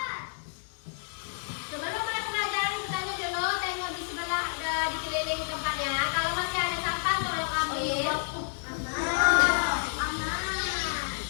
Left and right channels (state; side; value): silent; right; digital silence